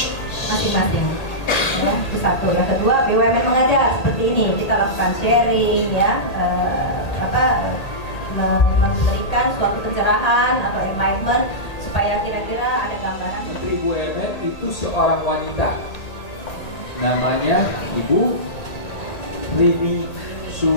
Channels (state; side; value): late; right; 1.8 ms